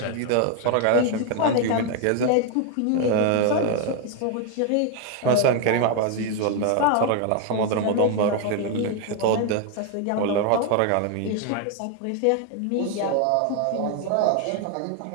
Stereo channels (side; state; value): both; different; correlation 0.01